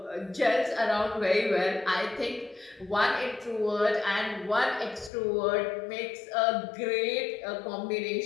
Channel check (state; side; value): drops out; right; at 5.1 s